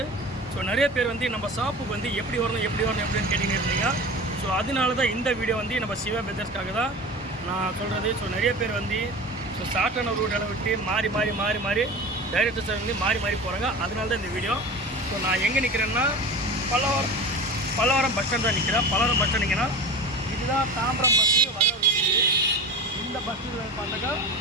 ஸோ நிறைய பேர் வந்து நம்ம ஷாப்புக்கு வந்து எப்படி வரணும் எப்படின்னு கேட்டிங்க இருந்தீங்க. ஸோ அதனால தான் இந்த வீடியோ வந்து நம்ம சிவா பெதர்ஸ்க்காக தான் நான் சொல்கிறது. ஸோ நிறைய பேர் வந்து ஷார்ட்டான ரூட்டில் விட்டு மாறி டைரக்டர்ஸ் வந்து மாறி போகிறாங்க. அதனால தான் இந்த வீடியோ. ஸோ நான் எங்கே நிற்கிறேன்னா பல்லவரம் பஸ் ஸ்டாண்ட் தான் நிற்கிறேன். பல்லவரம் பஸ் ஸ்டாண்டிங்கன்னா இதுதான் தாம்பரம் பஸ்ஸு வர ரூட். இந்த பஸ்ஸில் பார்த்தாக்கா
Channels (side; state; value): both; normal; correlation 0.31